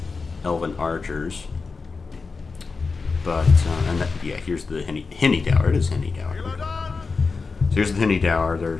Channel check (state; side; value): quieter; right; 4.5 dB